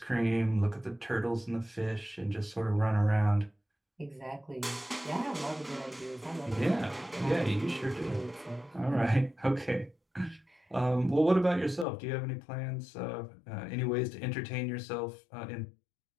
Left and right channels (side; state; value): right; drops out; at 11.9 s